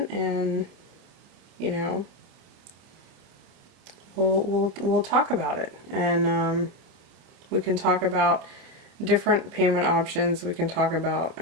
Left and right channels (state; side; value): late; left; 27 ms